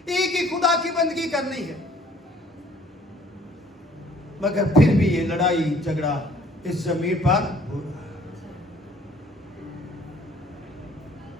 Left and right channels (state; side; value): normal; both; correlation 0.57